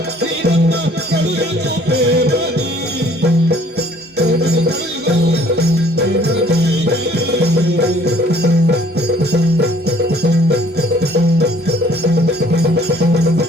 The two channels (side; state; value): both; normal; correlation 0.58